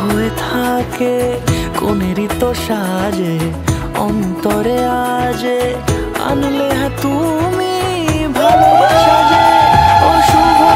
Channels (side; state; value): both; identical; correlation 1.00